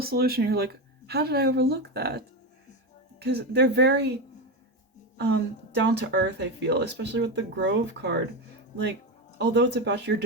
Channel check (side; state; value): both; normal; correlation 0.15